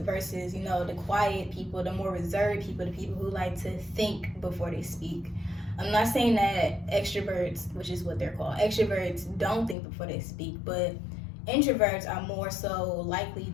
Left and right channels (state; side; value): drops out; right; at 9.8 s